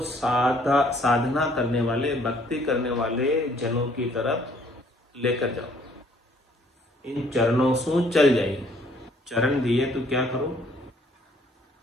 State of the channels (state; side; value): normal; both; correlation 0.62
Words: साधना करने वाले, भक्ति करने वाले जनों की तरफ लेकर जाओ। इन चरणों से चल जाइए। चरण दिए तो क्या करो